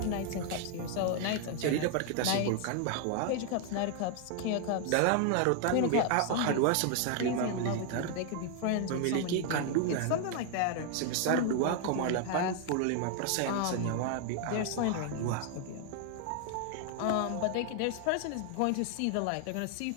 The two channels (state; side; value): different; both; correlation 0.00